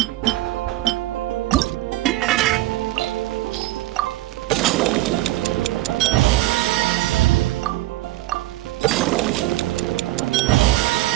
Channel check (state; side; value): quieter; left; 17.0 dB